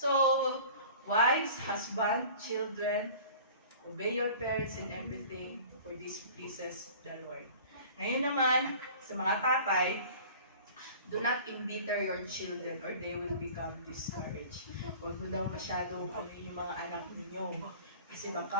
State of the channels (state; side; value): inverted; both; correlation -0.44